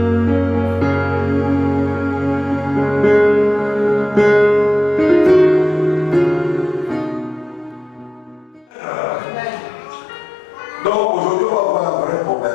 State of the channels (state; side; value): normal; both; correlation 0.88